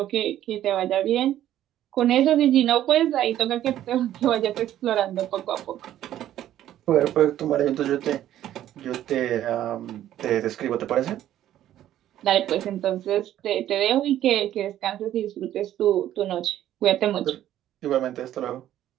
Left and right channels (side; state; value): left; quieter; 12.3 dB